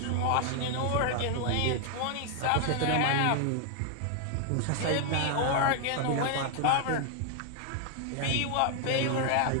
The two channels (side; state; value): both; different; correlation 0.00